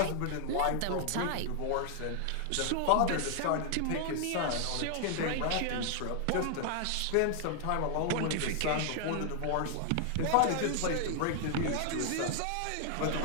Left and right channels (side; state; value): both; different; correlation 0.00